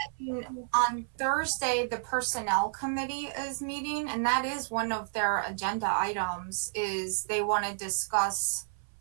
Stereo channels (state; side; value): silent; left; 57 dB below the other